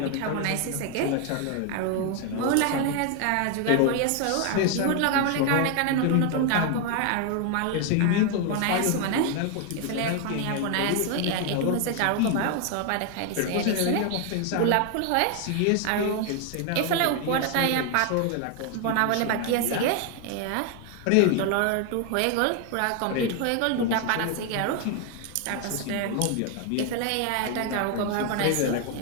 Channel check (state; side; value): different; both; correlation 0.01